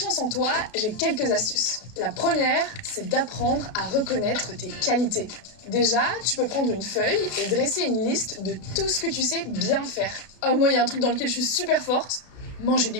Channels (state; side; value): late; right; 32 ms